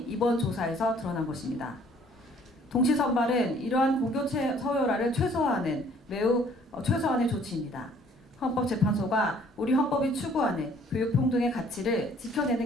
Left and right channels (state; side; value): normal; both; correlation 0.58